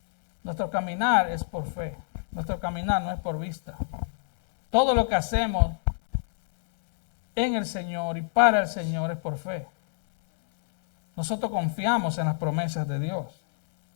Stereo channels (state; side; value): silent; right; 61 dB below the other